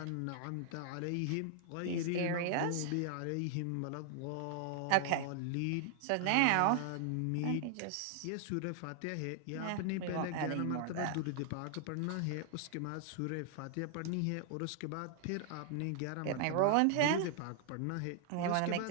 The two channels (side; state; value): both; different; correlation 0.00